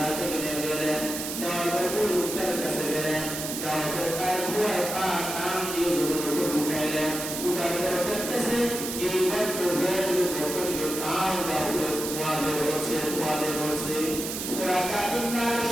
থেকে নেমে গেলেন, যাওয়ার পর ওই লোকটার কাছে গেলেন, যাওয়ার পর তার ঘোড়ার পা টান দিয়ে জোরে উঠাইলেন। উঠার পর দেখতেছে যে ভক্তকে কান দাউলে ধোঁয়া বের হচ্ছে। সুরাকা ইবনে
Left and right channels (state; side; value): noise; right; hiss, 5 dB below the sound